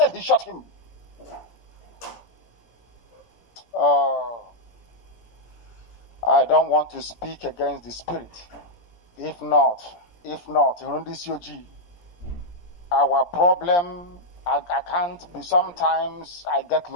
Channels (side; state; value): right; late; 17 ms